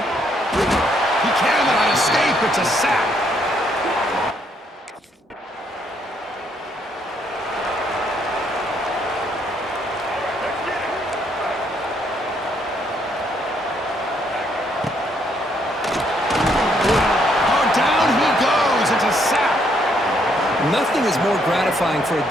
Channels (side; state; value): both; normal; correlation 0.71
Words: cannot escape. It's a sack. Nothing is more gratifying for a